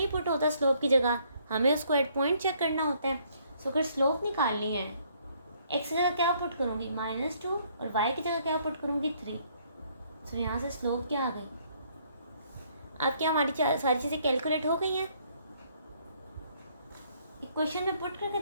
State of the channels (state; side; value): inverted; both; correlation -0.66